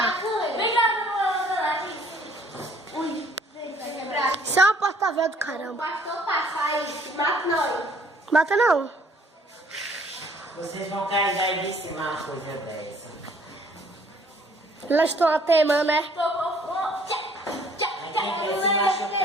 Vem lá aqui. Ui, vai quebrar. Isso é uma porta-véia do caramba. O pastor passar aí, mata nós. Mata não. Vocês vão carregar aí de cima uma coisa dessa. Elas estão até, mano, né? Aí quem quer se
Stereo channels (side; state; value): both; normal; correlation 0.59